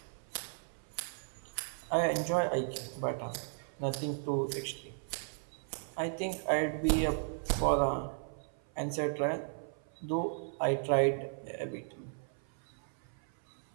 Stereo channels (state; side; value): silent; left; 54 dB below the other